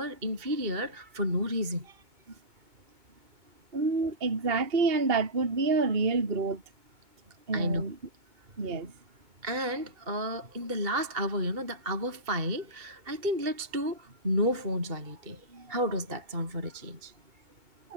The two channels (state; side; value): late; left; 2.2 ms